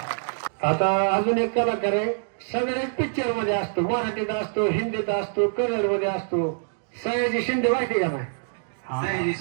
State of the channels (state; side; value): silent; left; digital silence